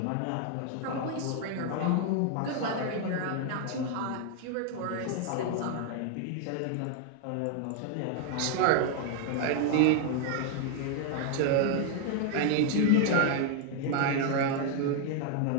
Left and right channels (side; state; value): both; different; correlation 0.00